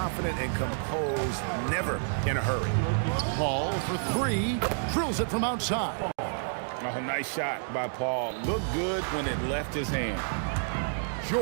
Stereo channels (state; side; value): silent; left; digital silence